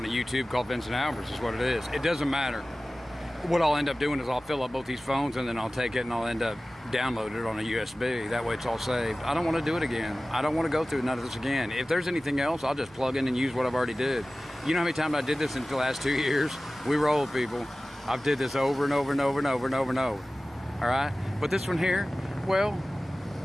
a YouTube called Vincent Albert's is what it is. It doesn't matter. What I'll end up doing is I'll fill up both these phones and then I'll take it and I'll end up downloading it on a USB. That way it's all saved. I don't want to do it again. I don't want to go through none of this again. If there's anything else, I'll just plug in and use what I've already did. You know how many times I did this in the last 2 years? We roll, people. I've did this over and over and over and over and over and over. All right? But this one here, well,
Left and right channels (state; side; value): noise; left; rumble, 28 dB below the sound